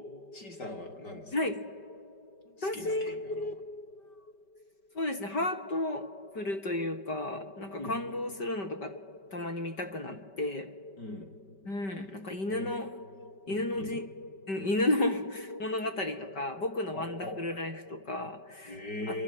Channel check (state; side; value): late; right; 5.2 ms